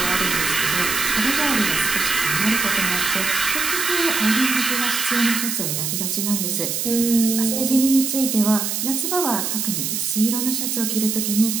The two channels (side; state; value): right; noise; hiss, 1 dB below the sound